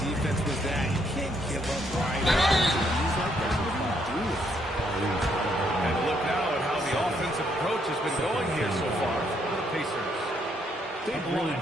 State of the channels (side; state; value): both; normal; correlation 0.72